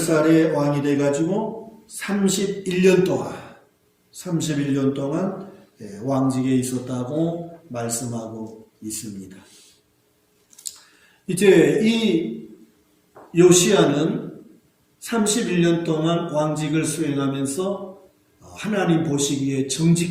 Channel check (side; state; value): both; identical; correlation 1.00